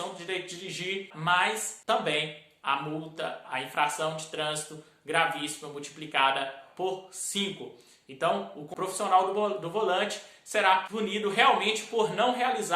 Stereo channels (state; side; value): identical; both; correlation 1.00